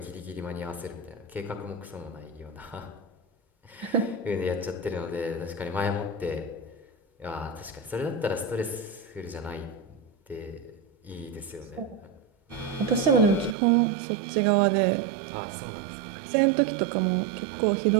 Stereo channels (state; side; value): drops out; left; at 13.6 s